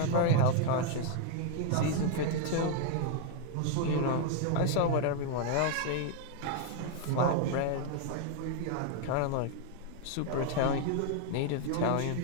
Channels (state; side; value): different; both; correlation 0.00